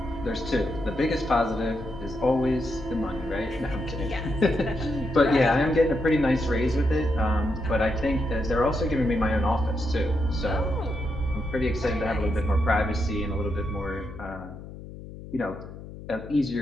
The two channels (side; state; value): left; noise; hum, 14 dB below the sound